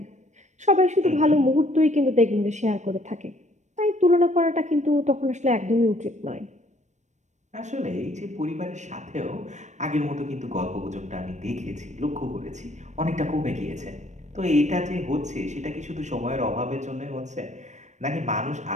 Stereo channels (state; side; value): late; left; 0.34 ms